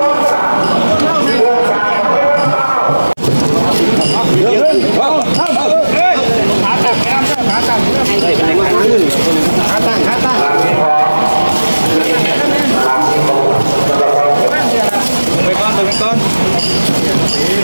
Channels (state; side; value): inverted; both; correlation -1.00